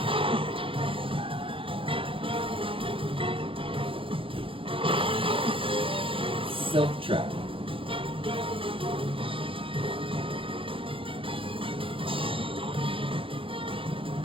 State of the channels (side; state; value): left; late; 0.26 ms